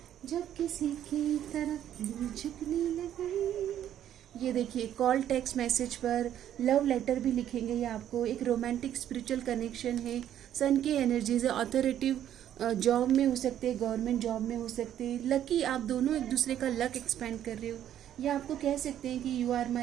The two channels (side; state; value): left; quieter; 10.8 dB